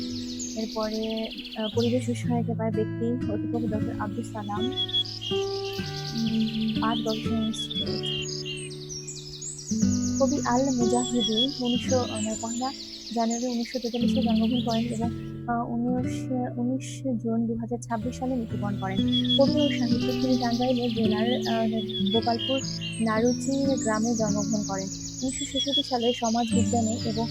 এরপরে পরিবেশ বিষয়কে পায় ব্যক্তি অধ্যাপক ডক্টর আব্দুল সালাম, পাট গবেষণা ইনস্টিটিউট। কবি আল মুজাহিদি 1 জানুয়ারি 1943-এ জন্মগ্রহণ করেন এবং 19 জুন 2026 সালে মৃত্যুবরণ করেন। কবি ও সাহিত্যিক, তিনি টাঙ্গাইলের জেলার গোপালপুর নারুচি গ্রামে জন্মগ্রহণ করেন। 1966 সালে সমাজ বিজ্ঞানে এবং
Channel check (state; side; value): identical; both; correlation 1.00